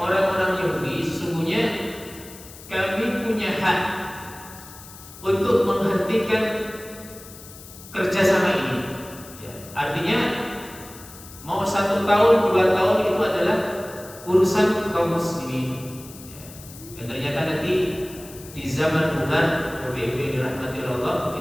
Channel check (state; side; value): noise; left; hiss, 17 dB below the sound